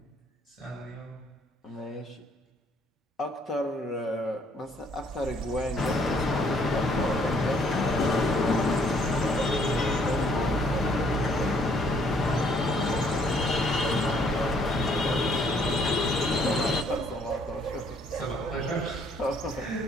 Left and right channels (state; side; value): normal; both; correlation 0.65